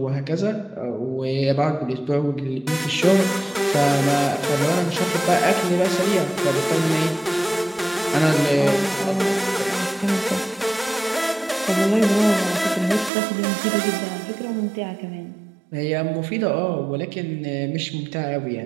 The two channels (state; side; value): drops out; left; at 13.1 s